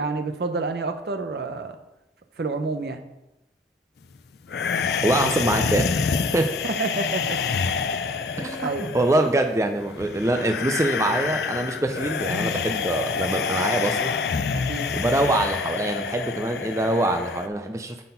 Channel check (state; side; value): normal; both; correlation 0.51